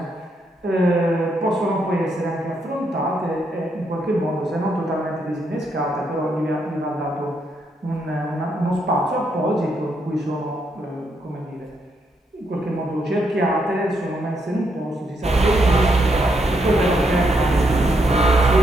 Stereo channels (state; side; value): normal; both; correlation 0.77